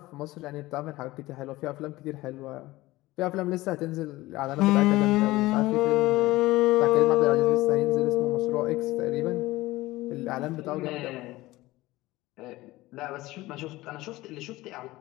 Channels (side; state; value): right; quieter; 18.6 dB